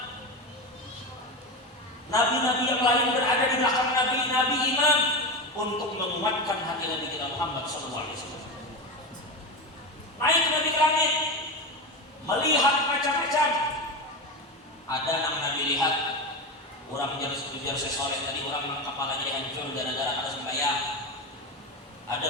Nabi-nabi yang lain berada di belakang Nabi imam untuk menguatkan hati Nabi kita Muhammad SAW. Naik Nabi ke langit, melihat macam-macam. Ada yang Nabi lihat, orang menjadi sesoleh tadi, orang kepalanya hancur gara-gara ada sembahyang.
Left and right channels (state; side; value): normal; both; correlation 0.19